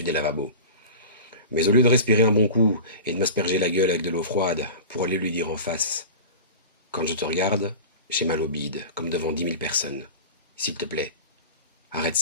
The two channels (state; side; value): inverted; both; correlation -0.33